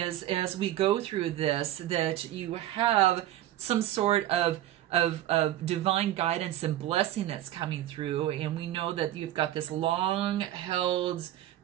as we go through this, that you have some sort of divine guidance and blessing that's coming through, and we know that you've got this long-held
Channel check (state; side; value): quieter; left; 13.5 dB